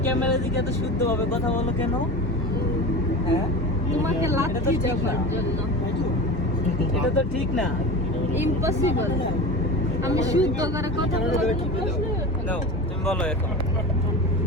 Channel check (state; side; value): normal; both; correlation 0.30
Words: ক্যামেরা দিকে এত শুদ্ধভাবে কথা বলো কেন হ্যাঁ তোমাকে লাথি দেওয়ার জন্য এটা তো ঠিক না ইম্পসিবল আমি শুদ্ধ করে কথা বলতে নাও তুমি বলো এখন